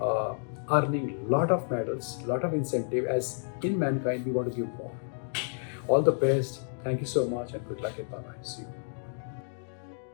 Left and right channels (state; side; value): silent; right; digital silence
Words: earning lot of medals, lot of incentive. As in Mankind, we want to give more. All the best. Thank you so much and good luck and bye bye. See you.